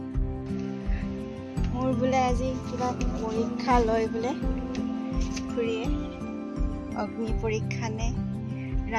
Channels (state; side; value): identical; both; correlation 1.00